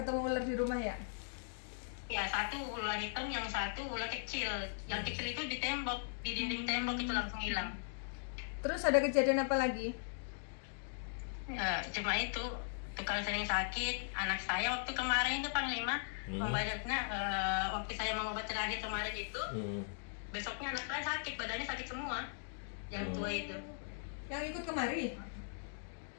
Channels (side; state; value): right; silent; digital silence